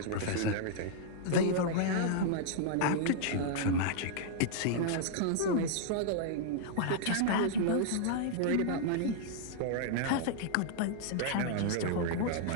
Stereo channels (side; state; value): both; different; correlation -0.01